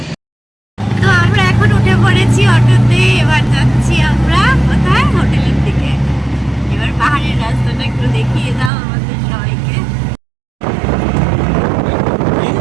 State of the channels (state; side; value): drops out; left; at 8.7 s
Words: তো আমরা এখন উঠে পড়েছি অটোতে, এবার যাচ্ছি আমরা কোথায়, হোটেলের দিকে। এবার পাহাড়ের রাস্তাটা একটু দেখিয়ে দাও আমাদের সবাইকে।